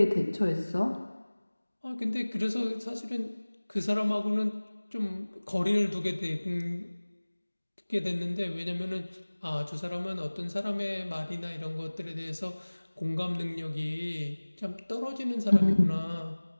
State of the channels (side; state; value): both; inverted; correlation -1.00